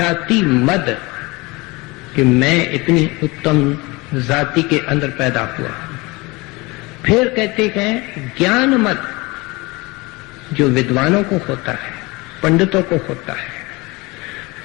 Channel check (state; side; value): quieter; right; 24.2 dB